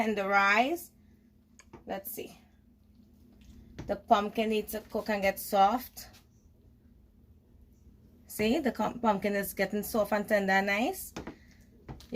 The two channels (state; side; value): identical; both; correlation 1.00